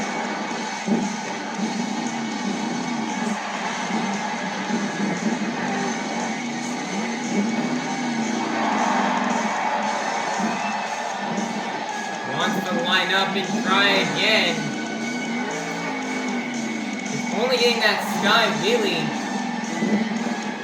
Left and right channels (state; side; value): identical; both; correlation 1.00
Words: Up and try again. He's only getting that sky wheelie.